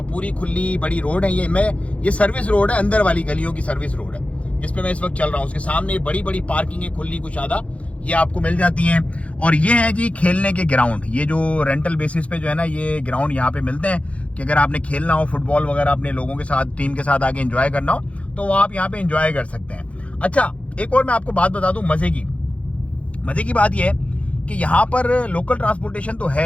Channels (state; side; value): late; right; 0.063 ms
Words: पूरी खुली बड़ी रोड है। ये सर्विस रोड है, अंदर वाली गलियों की सर्विस रोड है जिसपे मैं इस वक्त चल रहा हूँ। उसके सामने बड़ी बड़ी पार्किंग है, खुली कुशादा, ये आपको मिल जाती हैं। और ये है जी खेलने के ग्राउंड, ये जो रेंटल बेसिस पे जो है ना ये ग्राउंड यहाँ पे मिलते हैं, कि अगर आपने खेलना हो फुटबॉल वगैरह अपने लोगों के साथ, टीम के साथ आके एंजॉय करना हो, तो वो आप यहाँ पे एंजॉय कर सकते हैं। अच्छा, एक और मैं आपको बात बता दूं मजे की बात यह है कि यहाँ पर लोकल ट्रांसपोर्टेशन तो